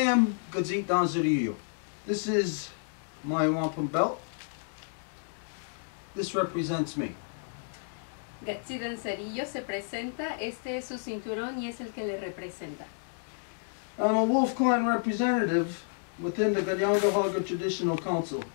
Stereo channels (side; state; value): right; silent; digital silence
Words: Gazit Danzarillo. This is my wampum belt. This represents me. Gatsi Danzarillo se presenta, este es su cinturón y es el que le representa. I'm a Wolf Clan representative within the Kahnawake Traditional Council,